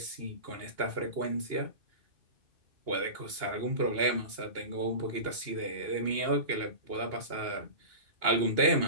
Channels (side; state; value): left; late; 2.8 ms